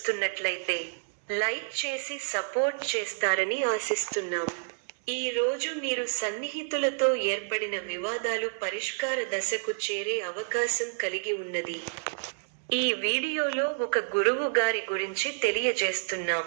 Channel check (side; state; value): left; silent; digital silence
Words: లైక్ చేసి సపోర్ట్ చేస్తారని ఆశిస్తున్నాం. ఈ రోజు మీరు సన్నిహితులతో ఏర్పడిన వివాదాలు పరిష్కార దశకు చేరే అవకాశం కలిగి ఉన్నది. ఈ వీడియోలో ఒక గురువు గారి గురించి తెలియజేస్తున్నాం.